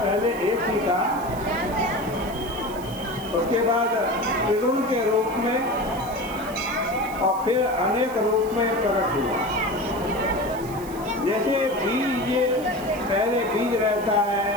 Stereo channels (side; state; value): right; noise; hiss, 18 dB below the sound